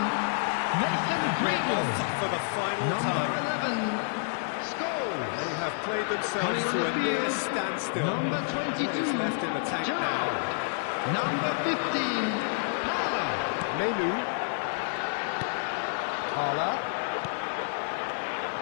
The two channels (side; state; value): right; silent; 59 dB below the other